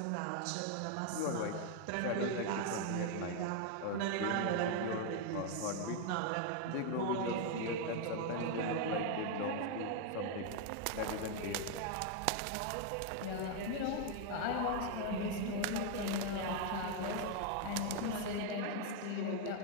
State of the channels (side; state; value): both; different; correlation 0.01